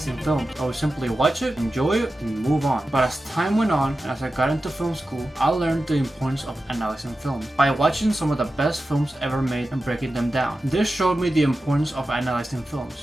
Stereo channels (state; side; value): normal; both; correlation 0.93